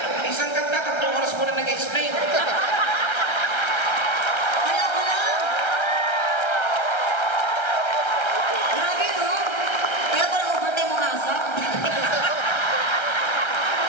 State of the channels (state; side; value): late; right; 1.3 ms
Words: Isang kanta, 3 oras mo na nag-explain. Kaya ko lang. Grabe, no? Kaya ko lang overtime mo asa.